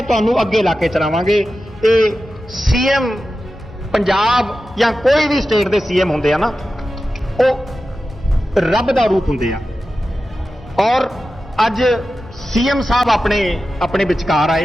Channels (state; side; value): normal; both; correlation 0.93